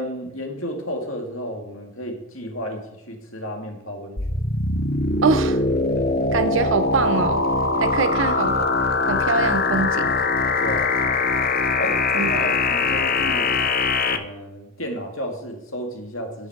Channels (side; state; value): both; normal; correlation 0.07